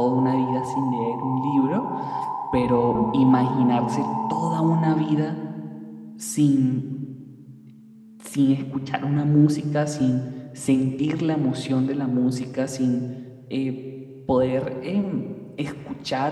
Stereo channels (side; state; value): both; identical; correlation 1.00